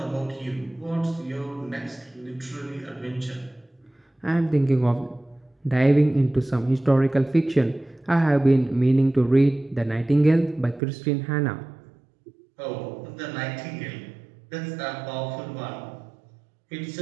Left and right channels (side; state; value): left; drops out; at 10.8 s